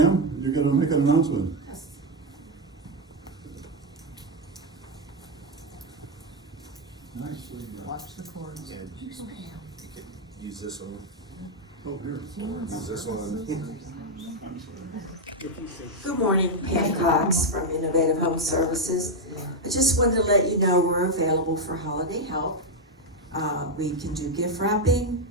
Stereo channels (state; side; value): normal; both; correlation 0.02